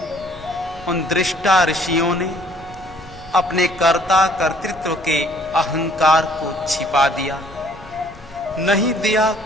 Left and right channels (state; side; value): noise; left; rumble, 20 dB below the sound